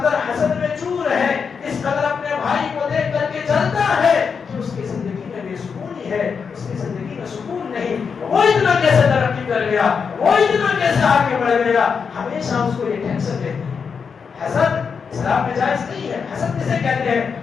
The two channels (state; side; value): quieter; right; 6.0 dB